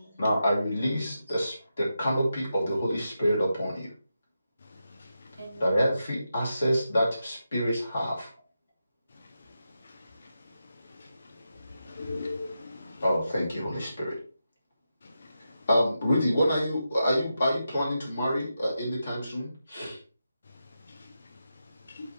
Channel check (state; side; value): inverted; both; correlation -0.88